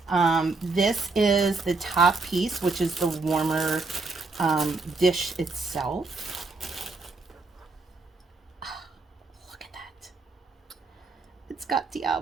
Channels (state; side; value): quieter; left; 3.8 dB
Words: This is the top piece, which is the warmer dish itself. Oh, look at that. It's got